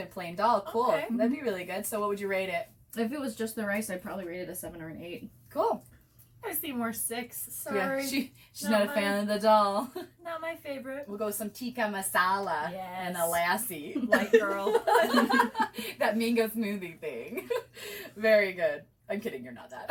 plain dal. Cool. Okay. That'd be really good. So what would you rate it? If it was just the rice, I'd probably rate it a 7 or an 8. Cool. I see more 6. Sorry. Yeah, she's Not not a fan of the dal. Not my favorite. We'll go with some tikka masala and a lassi. White girl. That mango smoothie thing. Very good. I'm kidding, you're not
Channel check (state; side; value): identical; both; correlation 1.00